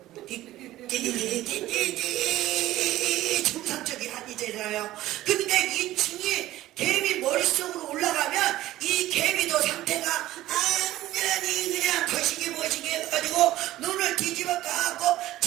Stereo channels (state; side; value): quieter; left; 15.3 dB